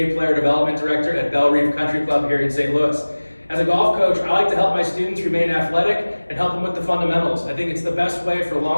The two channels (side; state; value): both; inverted; correlation -1.00